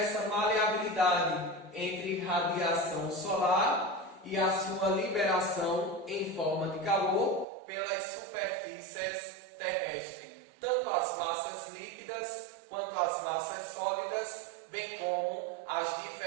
maleabilidade entre radiação solar e a sua liberação em forma de calor pelas superfícies terrestres, tanto as massas líquidas quanto as massas sólidas, bem como as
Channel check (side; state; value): left; drops out; at 7.5 s